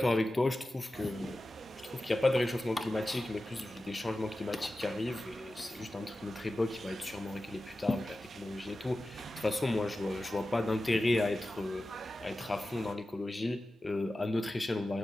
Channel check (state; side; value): normal; both; correlation 0.94